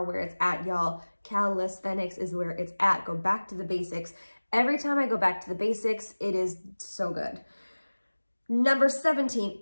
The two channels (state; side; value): inverted; both; correlation -1.00